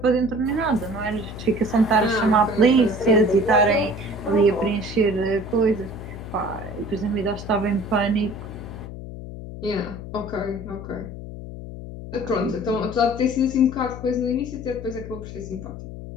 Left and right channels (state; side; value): noise; left; hum, 11 dB below the sound